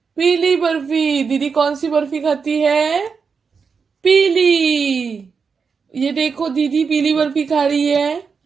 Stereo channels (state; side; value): quieter; left; 5.6 dB